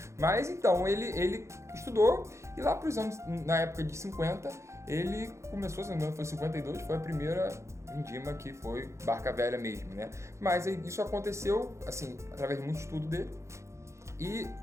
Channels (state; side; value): late; left; 0.14 ms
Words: Mas então, ele estudou e lá para os anos, na época de 50, ele começou, se não me engano, foi 52, foi a primeira vindima que foi Barca Velha mesmo, né? Mas isso aconteceu, assim, através de muito estudo dele. E